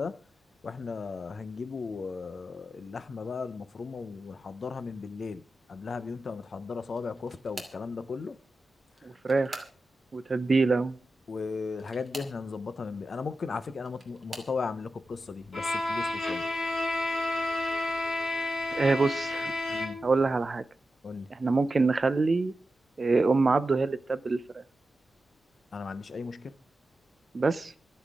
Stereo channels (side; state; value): both; normal; correlation 0.91